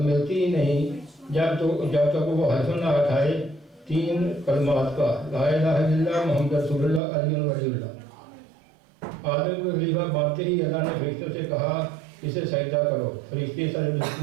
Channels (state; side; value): drops out; left; at 7.0 s